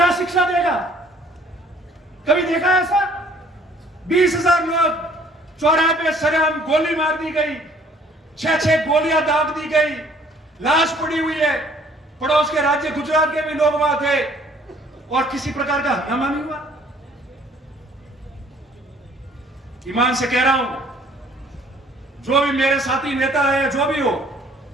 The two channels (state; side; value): normal; both; correlation 0.58